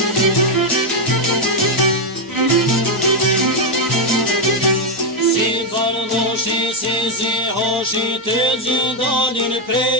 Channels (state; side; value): normal; both; correlation 0.02